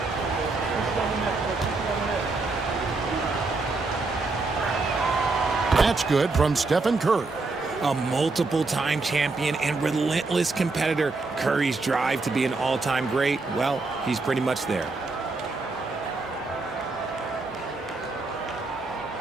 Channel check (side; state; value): left; quieter; 3.6 dB